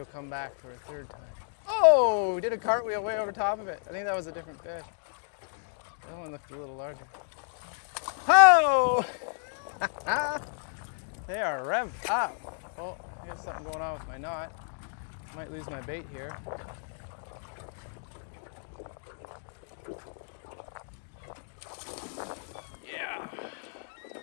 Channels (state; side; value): silent; right; digital silence